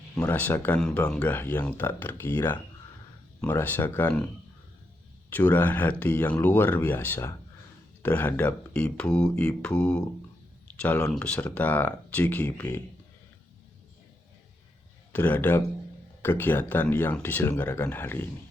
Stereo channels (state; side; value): normal; both; correlation 0.82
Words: merasakan bangga yang tak terkira, merasakan curahan hati yang luar biasa terhadap ibu-ibu calon peserta CGP terhadap kegiatan yang diselenggarakan hari ini.